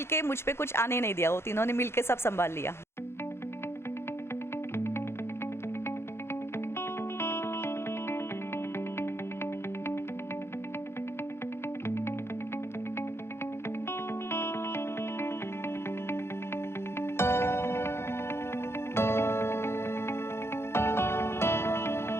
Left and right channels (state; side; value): late; right; 0.12 ms